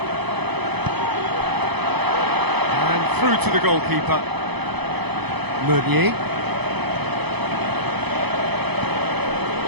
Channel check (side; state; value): left; late; 0.98 ms